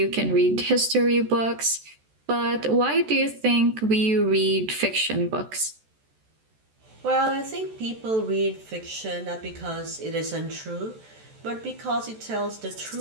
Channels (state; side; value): late; left; 14 ms